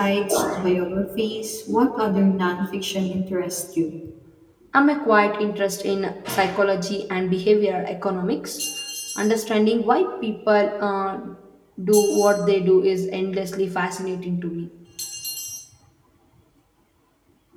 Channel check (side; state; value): both; identical; correlation 1.00